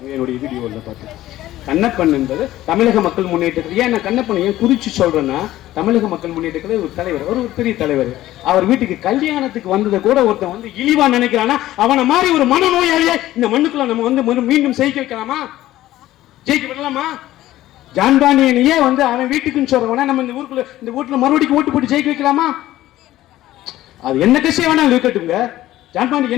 என்னுடைய வீடியோவில் பார்த்து கண்ணப்பன் என்பது தமிழக மக்கள் முன்னேற்றத்தில் ஏன் நான் கண்ணப்பன் ஏன் குறிச்சு சொல்றேன்னா, தமிழக மக்கள் முன்னேற்றத்தில் ஒரு தலைவர், ஒரு பெரிய தலைவர். அவர் வீட்டுக்கு கல்யாணத்துக்கு வந்ததை கூட ஒருத்தன் இழிவா நினைக்கிறானா அவனை மாதிரி ஒரு மனநோயாளியை இந்த மண்ணுக்குள்ள நம்ம மீண்டும் ஜெயிக்க வைக்கலாமா? ஜெயிக்க விடலாமா? ஜான் பாண்டியனையே அவன் வீட்டுக்குன்னு சொல்றவன நம்ம இந்த வீட்டுல மறுபடியும் ஓட்டு போட்டு ஜெயிக்க வைக்கலாமா? அது என்ன கட்சியை வேணாலும் இருக்கட்டுங்க. ஜான் பாண்டியன்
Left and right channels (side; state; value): right; quieter; 14.9 dB